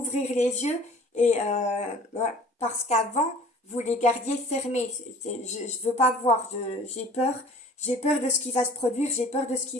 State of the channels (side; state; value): both; normal; correlation 0.48